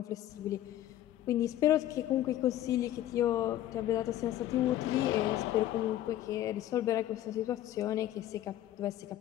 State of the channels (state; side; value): quieter; right; 13.1 dB